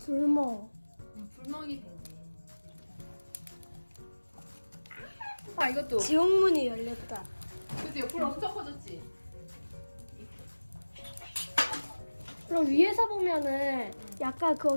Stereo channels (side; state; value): both; inverted; correlation -1.00